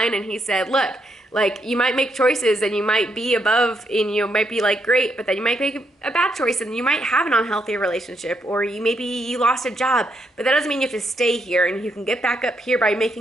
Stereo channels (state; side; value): normal; both; correlation 0.77